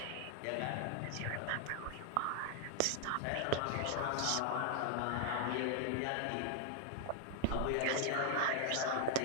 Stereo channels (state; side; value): different; both; correlation 0.00